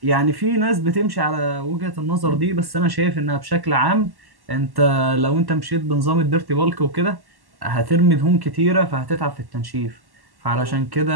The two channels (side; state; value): left; late; 1.1 ms